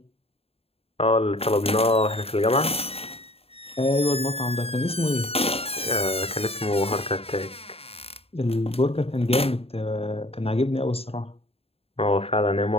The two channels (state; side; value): late; right; 0.29 ms